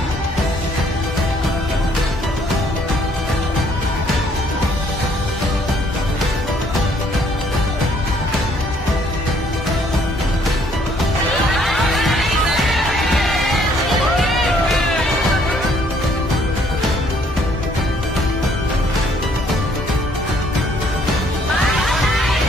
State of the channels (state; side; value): normal; both; correlation 0.64